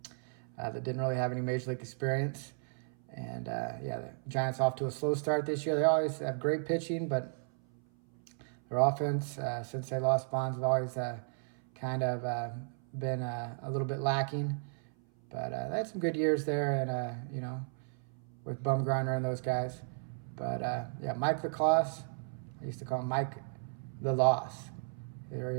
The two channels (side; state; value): left; silent; 55 dB below the other